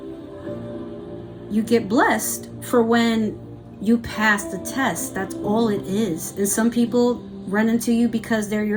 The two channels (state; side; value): identical; both; correlation 1.00